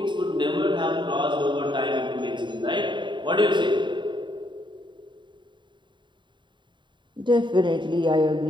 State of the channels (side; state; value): left; late; 0.23 ms